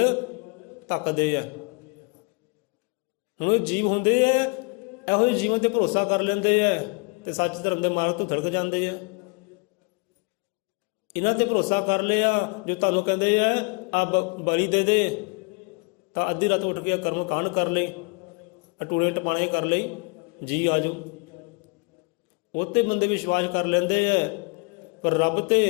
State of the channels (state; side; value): quieter; right; 31.7 dB